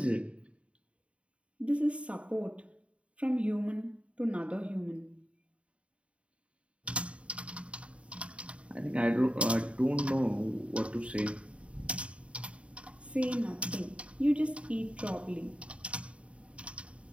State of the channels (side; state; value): left; late; 0.062 ms